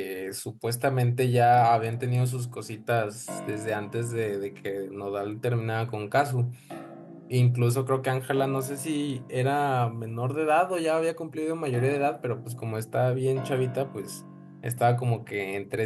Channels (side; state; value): both; identical; correlation 1.00